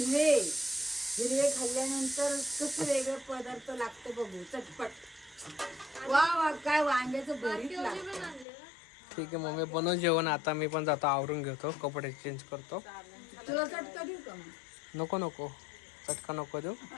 हिरवे खाल्ल्यानंतर कसं वेगळं पदार्थ लागतं बघू, चटपट. वा वा, काय वांग्याचं भरीत लागतं. ठीक आहे मग मी बनव जेवण. आता मी पण जातो, आवरून घेतो, कपडे चेंज करतो. तुला चटका देऊ का मग? नको नको, चटका नको देऊ.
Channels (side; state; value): right; drops out; at 8.5 s